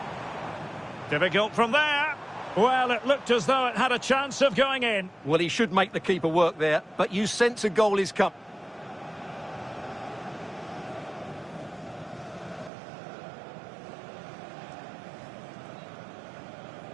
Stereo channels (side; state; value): left; drops out; at 12.7 s